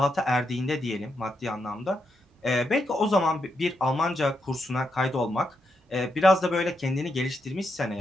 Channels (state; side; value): normal; both; correlation 0.82